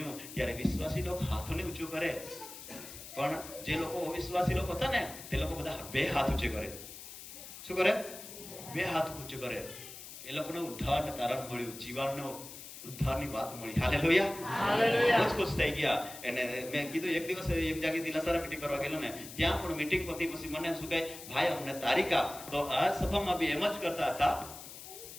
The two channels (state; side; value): noise; left; hiss, 13 dB below the sound